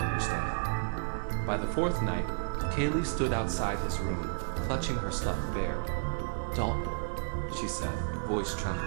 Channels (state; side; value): silent; left; 55 dB below the other